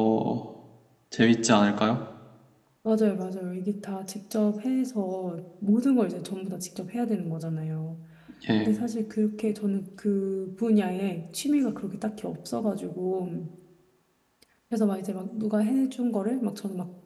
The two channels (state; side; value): identical; both; correlation 1.00